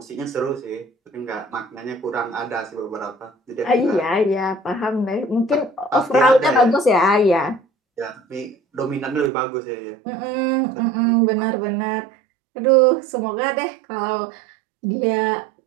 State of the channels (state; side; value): drops out; left; at 9.3 s